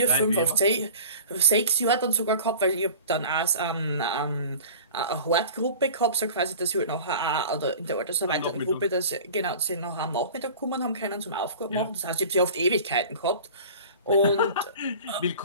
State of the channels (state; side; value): inverted; both; correlation -0.40